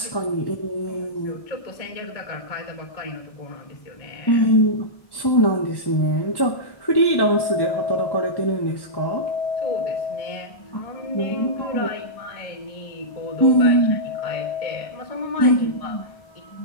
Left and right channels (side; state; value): right; late; 1.1 ms